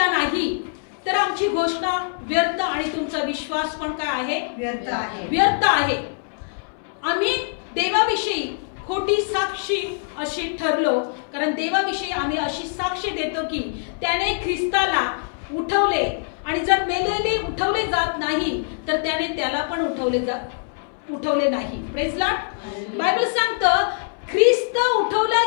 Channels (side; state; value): right; silent; 63 dB below the other